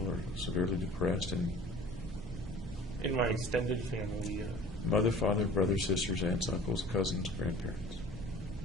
or severely depressed? And In my extended family, mother, father, brothers, sisters, aunts, uncles, cousins, grandparents?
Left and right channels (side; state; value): both; normal; correlation 0.45